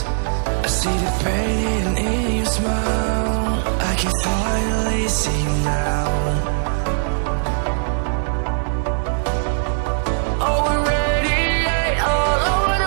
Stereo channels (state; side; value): silent; left; digital silence